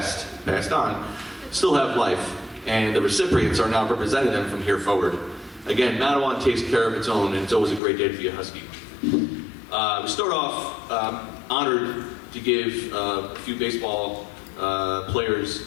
on, still have life, and the recipients are now representing them from here forward. Again, Matawan takes care of its own, and it's always a great day to be a Husky. We start off honored to give a few baseball players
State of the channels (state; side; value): drops out; right; at 7.8 s